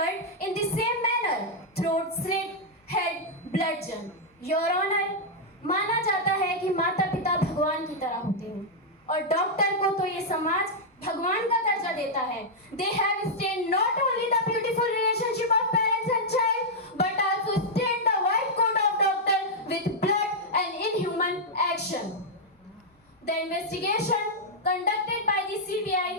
in the same manner, throat slit, head bludgeoned. Your Honor, माना जाता है कि माता पिता भगवान की तरह होते हैं और डॉक्टर को तो ये समाज भगवान का दर्जा देता है. They have stained not only the beautiful relationship of parents and child, but also stained the white coat of doctor with blood and inhuman action. The investigation conducted by the CBI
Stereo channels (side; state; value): both; normal; correlation -0.05